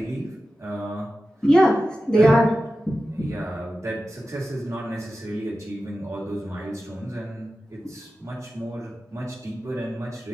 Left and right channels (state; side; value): normal; both; correlation 0.93